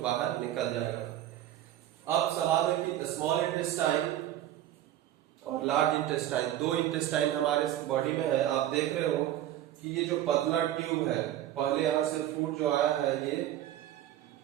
निकल जाएगा। अब सवाल है कि स्मॉल इंटेस्टाइन और लार्ज इंटेस्टाइन, 2 इंटेस्टाइन हमारे बॉडी में है। आप देख रहे हो कि ये जो पतला ट्यूब है, पहले यहां से फूड जो आया है ये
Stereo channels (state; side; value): quieter; left; 12.6 dB